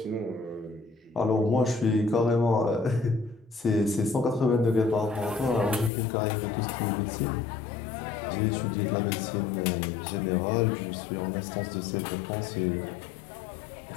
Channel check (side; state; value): right; drops out; at 5.9 s